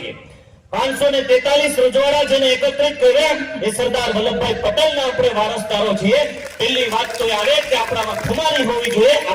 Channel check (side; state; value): both; identical; correlation 1.00